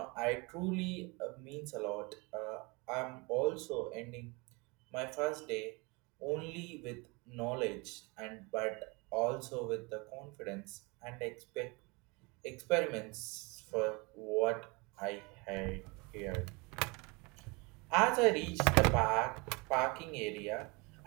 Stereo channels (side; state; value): left; quieter; 28.0 dB